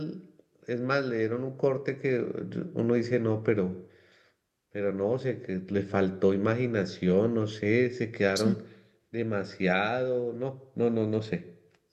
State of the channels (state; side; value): identical; both; correlation 1.00